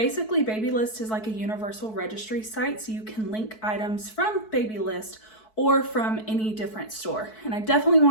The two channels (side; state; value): right; late; 4.6 ms